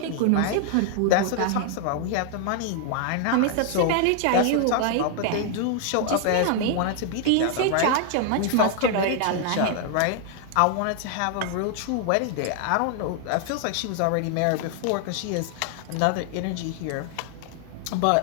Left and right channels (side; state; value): both; different; correlation 0.00